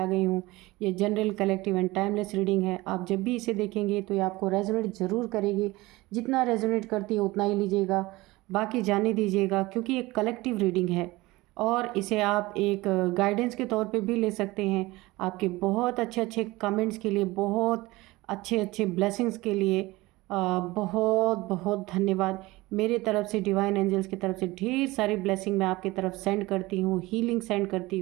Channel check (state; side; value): quieter; left; 20.3 dB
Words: गई हूँ। ये general, collective and timeless reading है। आप जब भी इसे देखेंगे तो ये आपको रेजोनेट ज़रूर करेगी। जितना रेजोनेट करती है उतना ही लीजिएगा, बाकी जाने दीजिएगा, क्योंकि एक कलेक्टिव रीडिंग है और इसे आप एक गाइडेंस के तौर पर भी ले सकते हैं। आपके बहुत अच्छे अच्छे कमेंट्स के लिए, बहुत अच्छे अच्छे ब्लेसिंग्स के लिए बहुत बहुत धन्यवाद। मेरे तरफ से, डिवाइन एंजल्स की तरफ से ढेर सारी ब्लेसिंग मैं आपकी तरफ सेंड करती हूँ, हीलिंग सेंड करती